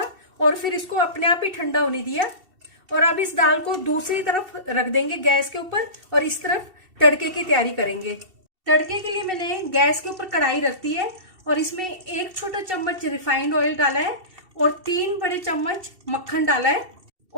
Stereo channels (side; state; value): left; late; 2.7 ms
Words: और फिर इसको अपने आप ही ठंडा होने दिया। और अब इस दाल को दूसरी तरफ रख देंगे गैस के ऊपर और इस तरफ तड़के की तैयारी करेंगे। तड़के के लिए मैंने गैस के ऊपर कढ़ाई रख दी है और इसमें 1 छोटा चम्मच रिफाइंड ऑयल डाला है और 3 बड़े चम्मच मक्खन डाला है।